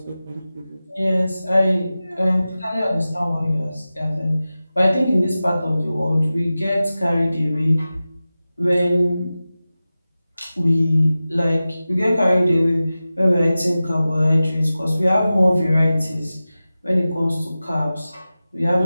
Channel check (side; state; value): both; inverted; correlation -0.95